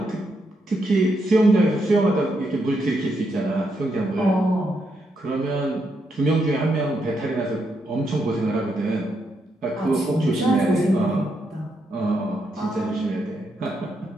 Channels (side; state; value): both; normal; correlation 0.80